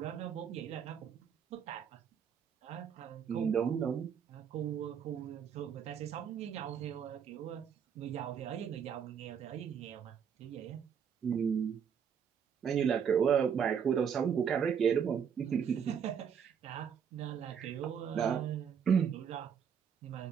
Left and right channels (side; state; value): left; quieter; 7.6 dB